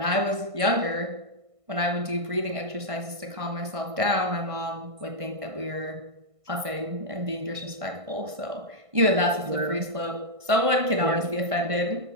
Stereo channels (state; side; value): late; left; 1.5 ms